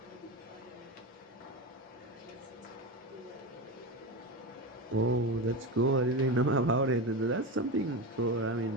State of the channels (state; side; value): normal; both; correlation 0.20